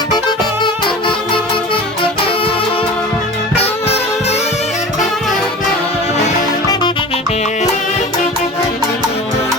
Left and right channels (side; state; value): both; normal; correlation 0.36